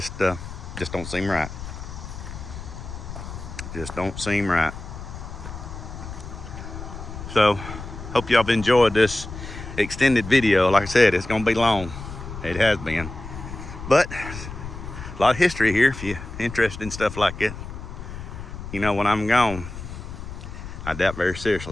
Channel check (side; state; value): left; noise; rumble, 10 dB below the sound